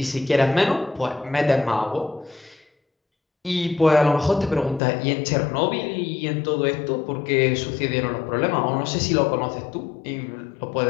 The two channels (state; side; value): drops out; right; at 4.8 s